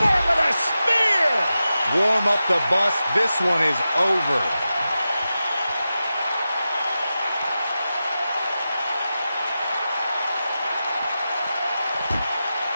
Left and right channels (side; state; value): both; inverted; correlation -0.92